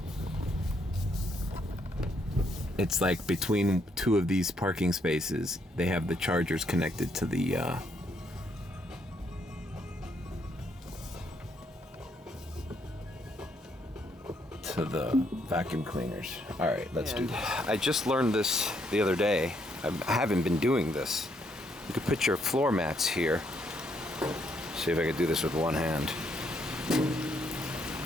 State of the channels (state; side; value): normal; both; correlation 0.73